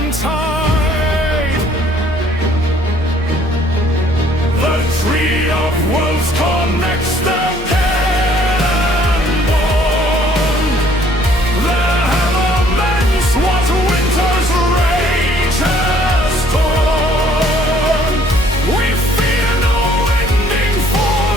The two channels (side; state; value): both; normal; correlation 0.60